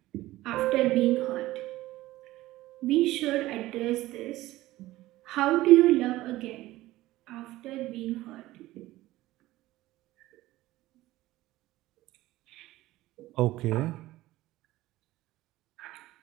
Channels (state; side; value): quieter; left; 16.9 dB